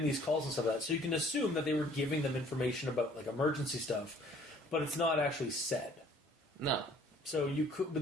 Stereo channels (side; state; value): both; normal; correlation 0.56